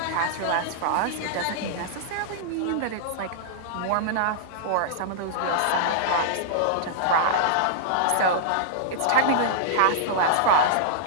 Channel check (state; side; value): different; both; correlation -0.02